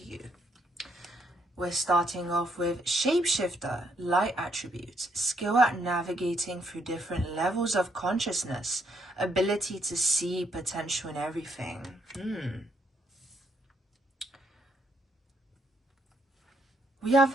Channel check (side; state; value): both; normal; correlation 0.74